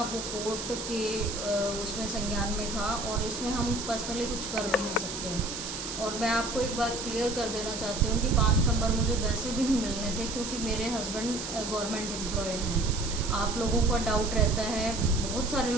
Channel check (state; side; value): noise; right; hiss, 6 dB below the sound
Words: वो कोर्ट के उसमें संज्ञान में था और इसमें हम पर्सनली कुछ कर भी नहीं सकते। और मैं आपको एक बात क्लियर कर देना चाहती हूँ कि 5 नंबर मुझे वैसे भी नहीं मिलने थे, क्योंकि मेरे हस्बैंड गवर्नमेंट एम्प्लॉय हैं। आप लोगों का डाउट रहता है, बहुत सारे